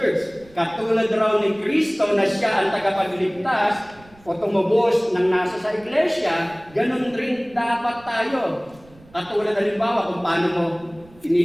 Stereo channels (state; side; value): noise; right; rumble, 25 dB below the sound